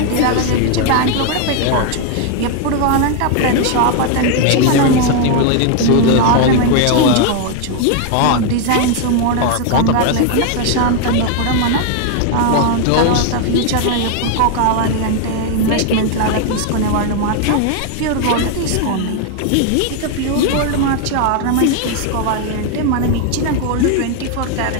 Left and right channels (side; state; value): both; different; correlation 0.01